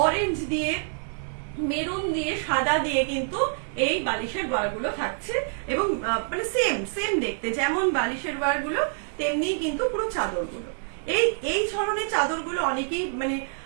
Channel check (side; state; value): left; silent; 61 dB below the other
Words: অরেঞ্জ দিয়ে, মেরুন দিয়ে, সাদা দিয়ে কিন্তু এই বালিশের ওয়ারগুলো থাকছে এবং মানে সেম দেখতে, যেমন বালিশের ওয়ারগুলো তেমনি কিন্তু পুরো চাদরগুলো। এই ধরনের চাদরগুলো অনেকেই মানে